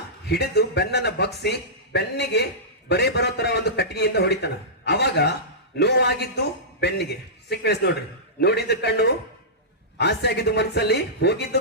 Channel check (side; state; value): both; normal; correlation -0.17